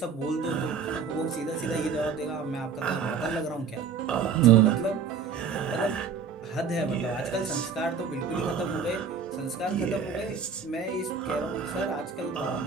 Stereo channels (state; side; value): quieter; left; 6.0 dB